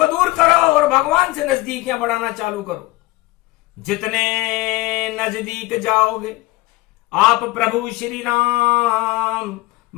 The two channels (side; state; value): right; quieter; 19.7 dB